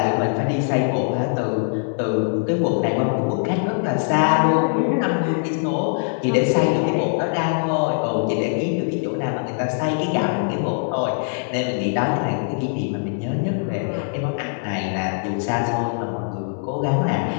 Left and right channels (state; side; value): silent; right; digital silence